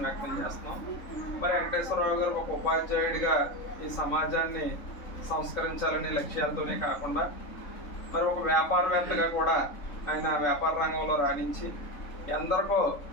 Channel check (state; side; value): late; right; 3.7 ms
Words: వ్యక్తం చేస్తున్నాం. మరి వెంకటేశ్వరరావు గారు ఒక ఉపాధ్యాయుడిగా ఈ సమాజాన్ని సంస్కరించాలనే లక్ష్యాలతోనే కాకుండా మరి ఒక వ్యాపారవేత్తగా కూడా ఆయన వ్యాపార రంగంలో రాణించి ఎందరికో